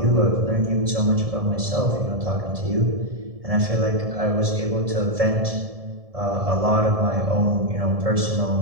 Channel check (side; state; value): left; late; 1.7 ms